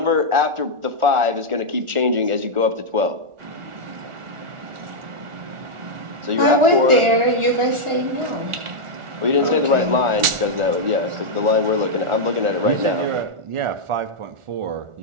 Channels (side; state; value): left; late; 1.4 ms